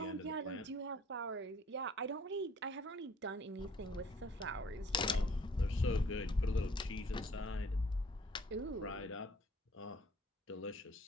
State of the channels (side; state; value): both; normal; correlation 0.57